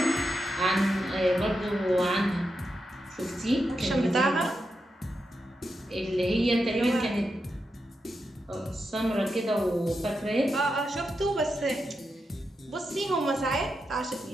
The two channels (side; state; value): both; normal; correlation 0.87